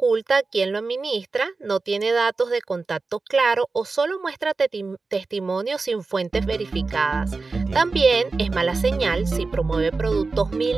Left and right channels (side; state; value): left; quieter; 3.9 dB